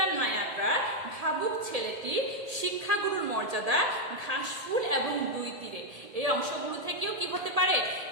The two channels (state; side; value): late; left; 1.8 ms